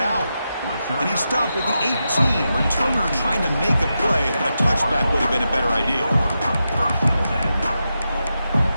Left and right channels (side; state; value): both; inverted; correlation -0.88